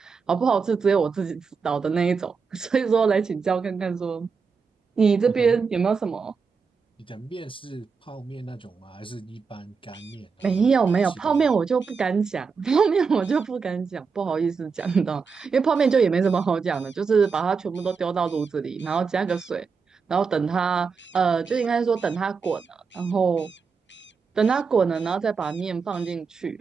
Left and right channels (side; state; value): left; quieter; 5.4 dB